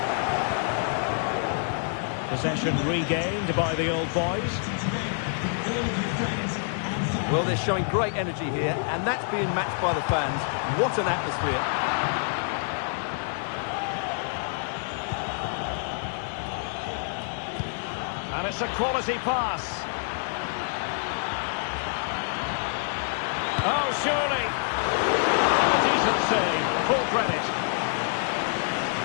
Possession regained by the old boys. Well, they're showing great energy here, and that's being matched by the fans. What an atmosphere. And it's a quality pass. Oh, surely. And a decent save. Full credit.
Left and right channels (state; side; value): silent; right; digital silence